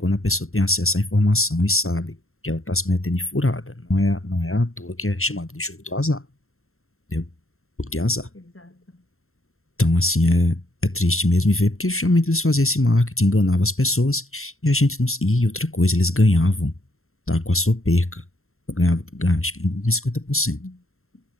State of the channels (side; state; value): right; late; 0.62 ms